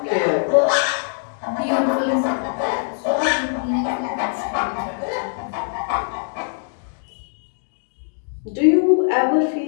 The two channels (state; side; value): silent; right; digital silence